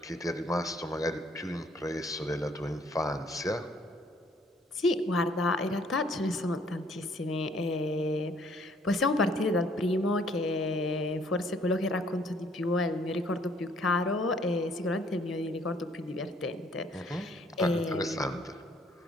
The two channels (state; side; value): normal; both; correlation 0.62